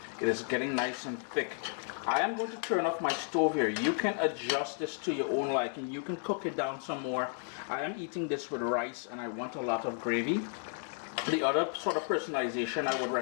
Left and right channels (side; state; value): right; silent; 56 dB below the other